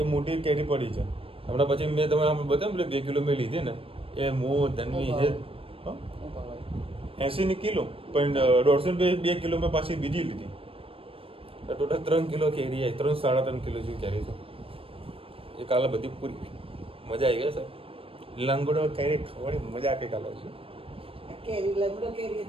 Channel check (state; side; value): late; left; 0.27 ms